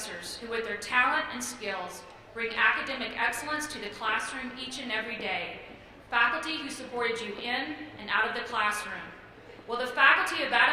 who, with their talent and skills, bring academic excellence to the classroom each and every day. Faculty who supported you in and out of the classroom. Will the faculty of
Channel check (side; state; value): both; identical; correlation 1.00